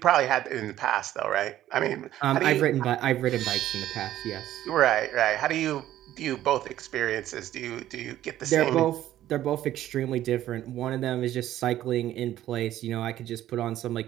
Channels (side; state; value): left; quieter; 13.1 dB